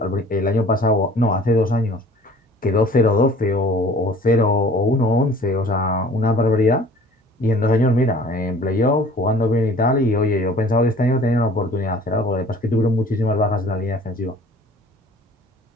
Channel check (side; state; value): both; normal; correlation 0.49